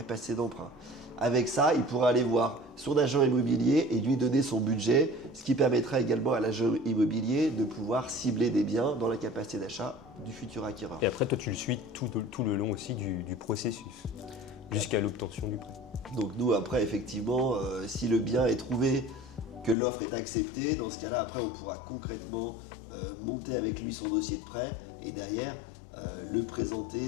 d'emprunt. Avec ça, il pourra aller voir son agent immobilier et lui donner son budget, ce qui permettra également à l'agent immobilier de pouvoir cibler des biens dans la capacité d'achat du futur acquéreur. Et après, toi, tu le suis tout le long aussi du processus, jusqu'à l'obtention du prêt. Donc nous, après, effectivement, si le bien est trouvé, que l'offre est acceptée, dans ce cas-là, après, on pourra concrètement monter avec lui son dossier de prêt et derrière, le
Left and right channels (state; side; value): drops out; right; at 19.8 s